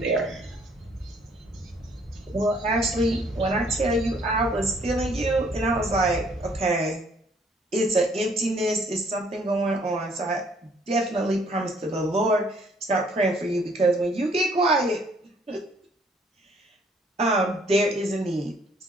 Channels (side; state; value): both; normal; correlation 0.63